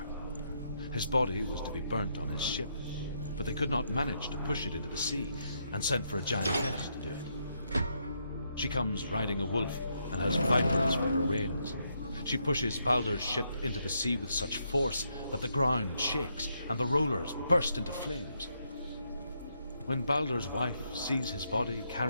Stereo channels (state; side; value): inverted; both; correlation -0.78